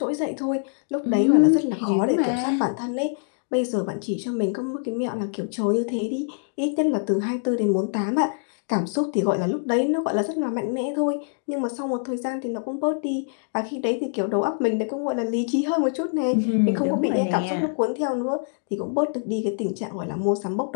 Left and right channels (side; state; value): right; silent; digital silence